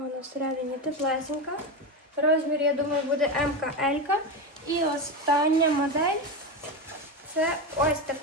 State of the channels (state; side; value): normal; both; correlation 0.16